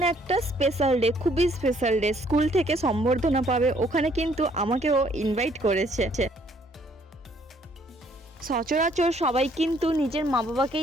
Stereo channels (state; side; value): normal; both; correlation 0.64